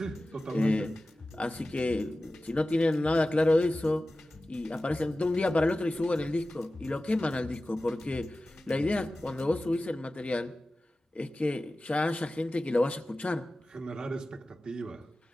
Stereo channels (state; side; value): normal; both; correlation 0.96